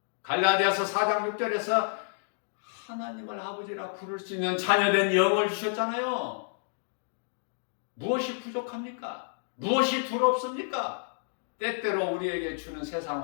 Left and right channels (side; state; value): right; silent; digital silence